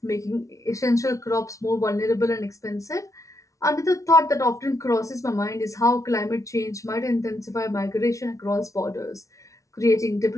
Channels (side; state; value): right; late; 0.15 ms